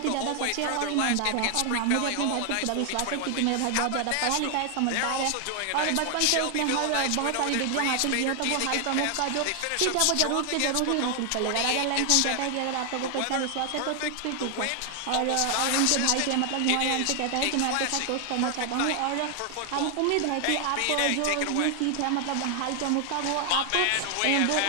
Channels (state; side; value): different; both; correlation 0.00